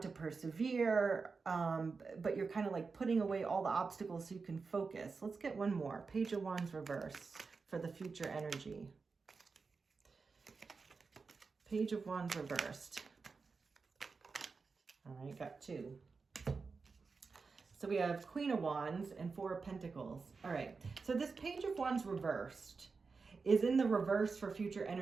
persevere, but you're kind of like putting away all the obstacles so you can focus. Let's get one more. Page of Wands reverse for the future energy. Page of Wands reversed. All right, got two. So we have Queen of Wands and Four of Pentacles. All right, so this Page of Wands reversed is in the reverse for future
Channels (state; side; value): quieter; left; 4.6 dB